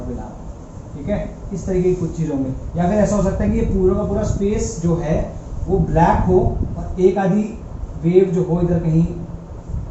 will happen, ठीक है। इस तरीके की कुछ चीज़ होंगी, या फिर ऐसा हो सकता है कि ये पूरा का पूरा स्पेस जो है वो ब्लैक हो और एक आधी वेव जो हो इधर कहीं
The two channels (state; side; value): identical; both; correlation 1.00